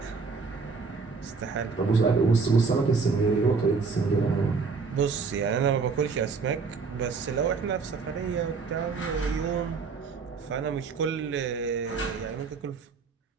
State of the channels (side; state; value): left; quieter; 4.8 dB